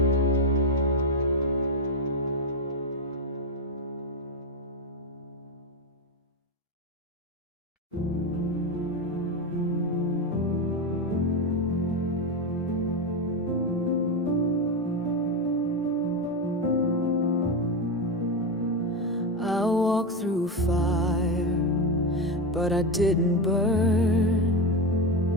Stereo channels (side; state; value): both; normal; correlation 0.13